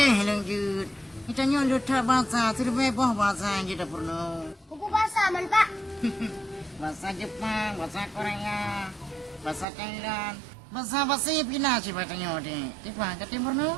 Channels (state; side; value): drops out; left; at 9.7 s